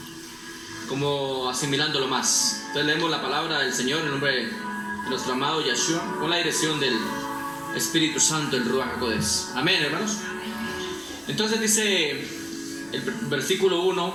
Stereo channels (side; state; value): both; identical; correlation 1.00